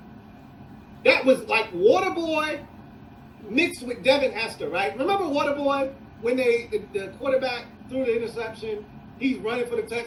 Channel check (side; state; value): both; identical; correlation 1.00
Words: That was like Waterboy mixed with Devin Hester, right? Remember Waterboy when the quarterback threw the interception? He's running for the